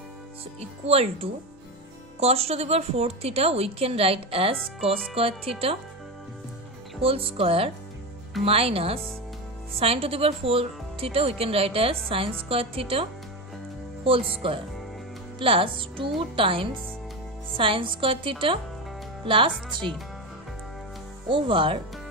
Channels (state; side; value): normal; both; correlation 0.18